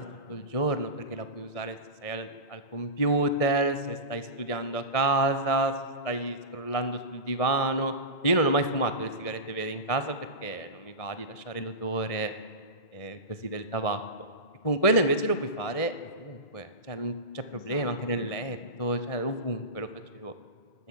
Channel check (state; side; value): late; right; 1.7 ms